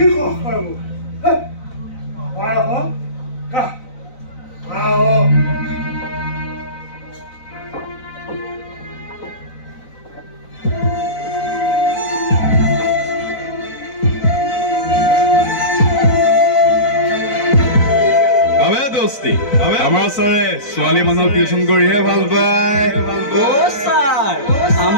দোস্তি আমাৰ ছাৰে ছোৱালী মানুহক টিউচন কৰিহে ভাল পায় অ' ছাৰ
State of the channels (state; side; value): late; right; 4.0 ms